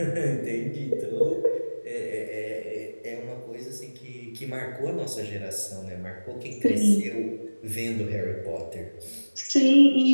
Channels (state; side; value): inverted; both; correlation -1.00